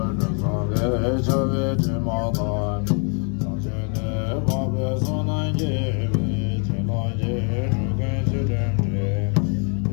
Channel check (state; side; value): quieter; right; 39.4 dB